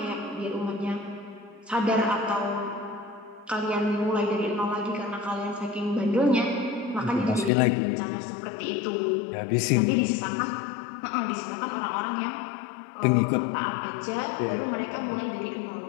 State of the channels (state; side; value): drops out; right; at 7.5 s